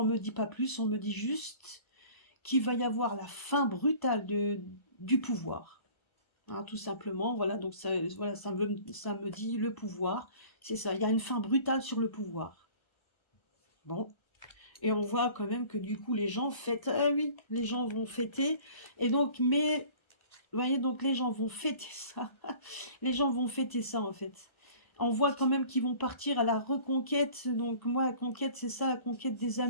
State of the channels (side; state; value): right; late; 1.3 ms